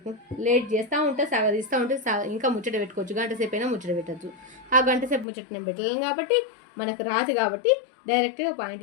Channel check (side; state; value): right; drops out; at 5.2 s